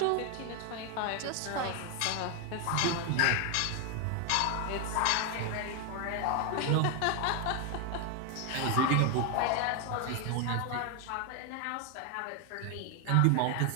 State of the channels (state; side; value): different; both; correlation 0.01